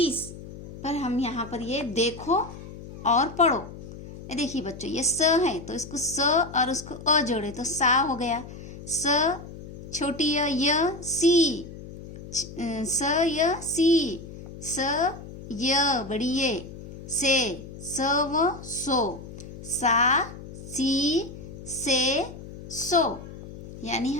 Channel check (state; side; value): noise; left; hum, 14 dB below the sound